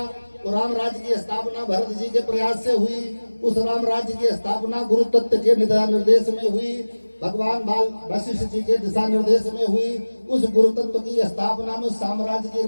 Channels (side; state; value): both; inverted; correlation -1.00